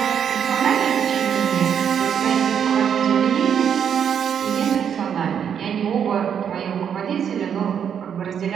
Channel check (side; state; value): left; quieter; 8.1 dB